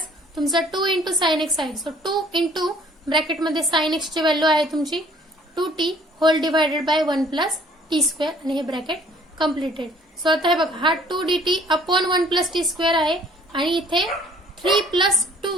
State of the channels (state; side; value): normal; both; correlation 0.57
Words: तुमचा 2 इंटू साइन एक्स आहे. सो 2 इंटू ब्रॅकेटमध्ये साइन एक्स ची व्हॅल्यू आहे तुमची 2t whole divided by 1 plus T square आणि हे ब्रॅकेट कम्प्लिटेड. सो आता हे बघा हा 2dt upon 1 plus T square आहे आणि इथे 3 plus